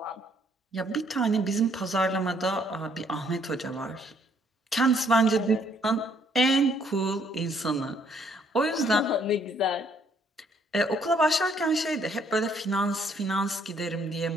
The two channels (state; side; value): normal; both; correlation 0.66